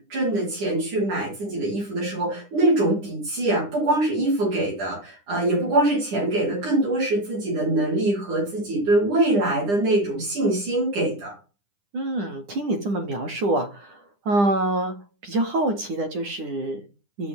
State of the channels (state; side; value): late; left; 9.9 ms